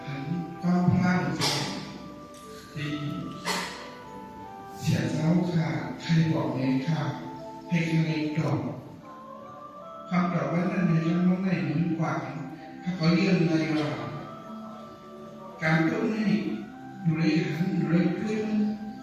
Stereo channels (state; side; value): identical; both; correlation 1.00